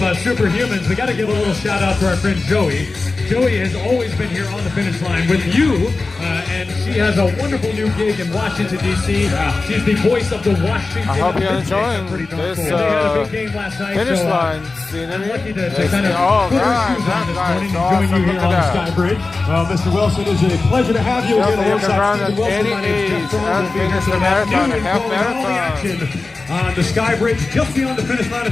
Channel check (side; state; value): right; quieter; 3.6 dB